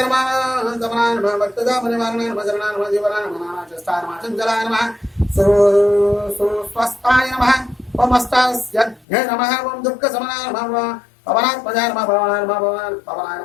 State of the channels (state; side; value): drops out; right; at 9.1 s